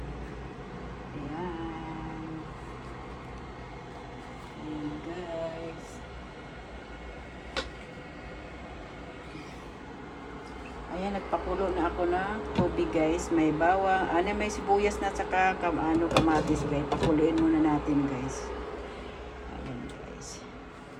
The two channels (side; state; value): both; identical; correlation 1.00